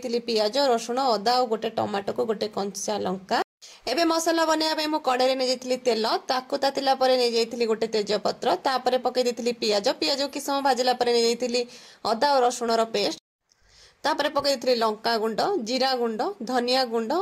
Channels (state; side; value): identical; both; correlation 1.00